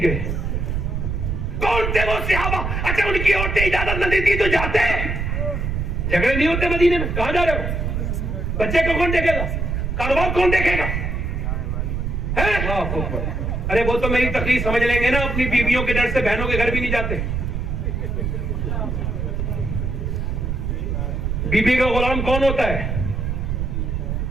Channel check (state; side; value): noise; right; rumble, 1 dB below the sound